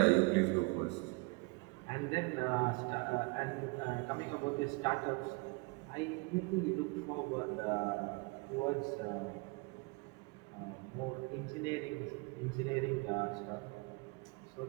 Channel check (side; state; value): left; quieter; 28.3 dB